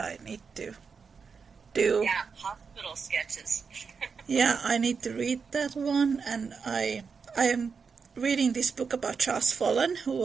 need to do. Yeah, hospital sketches. Yeah, I need to read that one, and I am reading this book about Charles Follen, who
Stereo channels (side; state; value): left; quieter; 5.6 dB